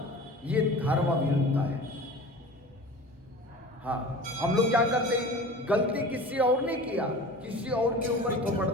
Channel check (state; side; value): normal; both; correlation 0.38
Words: ये धर्म विरुद्ध है। हाँ, हम लोग क्या करते हैं, गलती किसी और ने किया, किसी और के ऊपर थोपड़